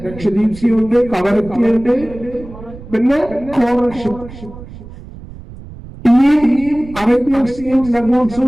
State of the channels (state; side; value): noise; right; rumble, 16 dB below the sound